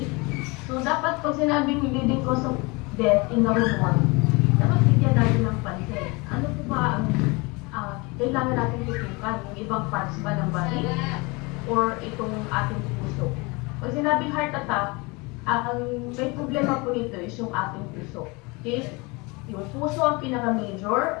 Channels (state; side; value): quieter; right; 26.7 dB